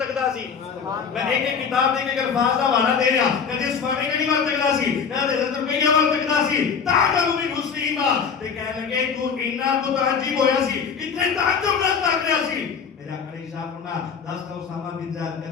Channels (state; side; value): quieter; right; 6.4 dB